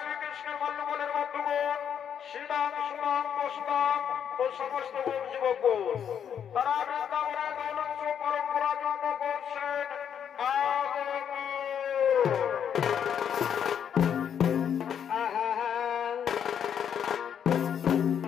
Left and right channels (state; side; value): quieter; right; 8.4 dB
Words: মল্লবনের বন্ধুগণ শ্রীরাম সুরাম বসুরাম ও সমস্ত যুবক তারা বৃন্দাবনের গৌরব পরম্পরার জন্য করছেন